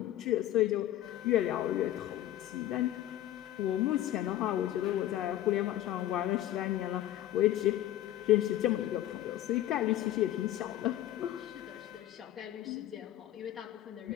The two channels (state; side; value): quieter; right; 13.3 dB